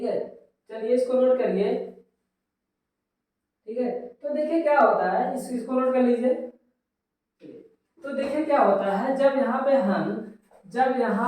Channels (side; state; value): both; identical; correlation 1.00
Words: है, चलिए इसको नोट करिए। ठीक है, तो देखिए क्या होता है, इसको नोट कर लीजिए। तो देखिए क्या होता है, जब